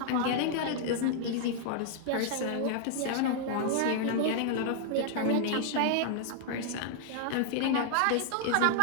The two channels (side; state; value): both; different; correlation 0.00